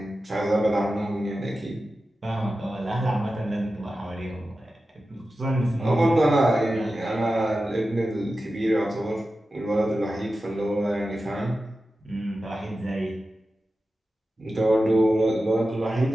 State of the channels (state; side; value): normal; both; correlation 0.93